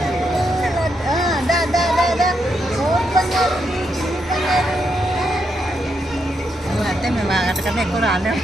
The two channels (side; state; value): both; normal; correlation 0.81